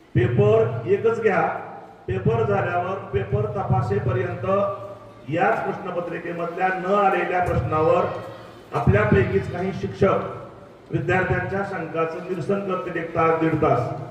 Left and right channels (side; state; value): both; identical; correlation 1.00